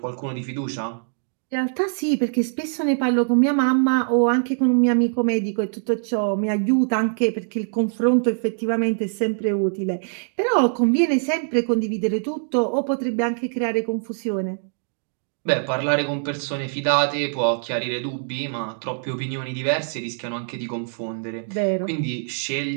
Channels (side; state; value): left; silent; digital silence